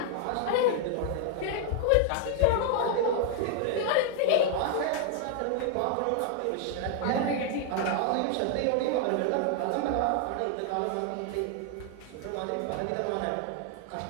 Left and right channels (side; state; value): both; different; correlation 0.00